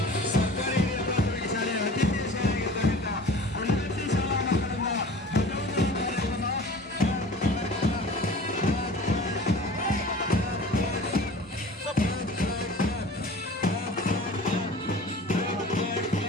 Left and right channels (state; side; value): normal; both; correlation 0.41